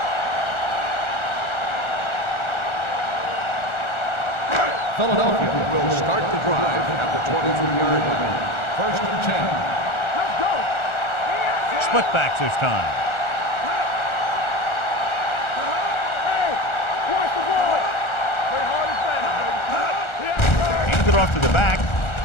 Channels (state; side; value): late; right; 1.4 ms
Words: Philadelphia will start the drive at the 23-yard line. First and 10. Let's go. Split backs this time. Hey, watch the ball. Play hard and fast. Hands it off to the back.